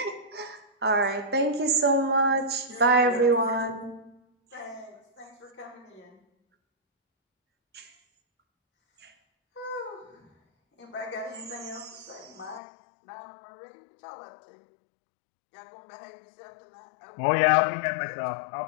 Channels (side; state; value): right; drops out; at 12.6 s